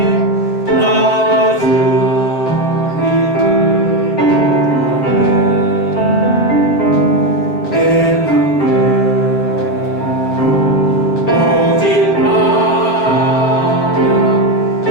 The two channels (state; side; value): late; right; 7.9 ms